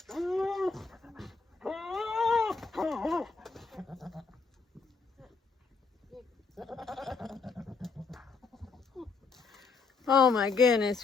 Oh my goodness,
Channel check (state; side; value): quieter; right; 4.6 dB